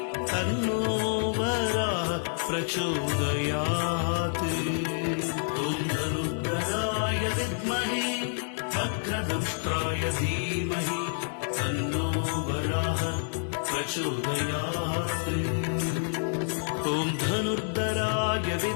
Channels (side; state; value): right; silent; digital silence